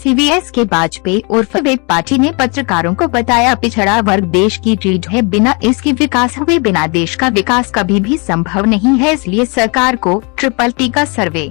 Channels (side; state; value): right; quieter; 31.8 dB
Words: एस.के. वाजपेयी उर्फ वेब पार्टी ने पत्रकारों को बताया, पिछड़ा वर्ग देश की रीढ़ है, बिना इसके विकास हुए बिना देश का विकास कभी भी संभव नहीं है। इसलिए सरकार को ट्रिपल का सर्वे